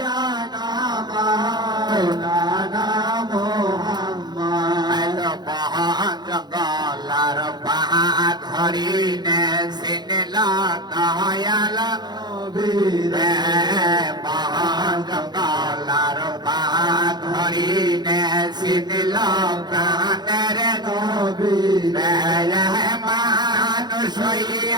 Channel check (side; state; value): left; late; 0.21 ms